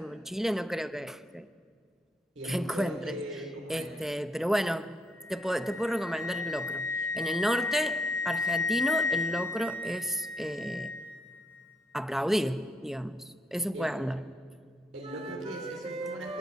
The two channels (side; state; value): both; normal; correlation 0.75